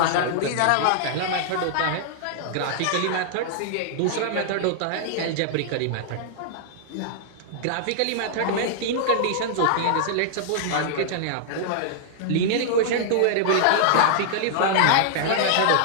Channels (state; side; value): different; both; correlation -0.01